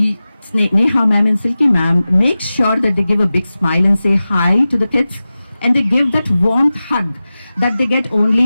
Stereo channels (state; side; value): inverted; both; correlation -0.95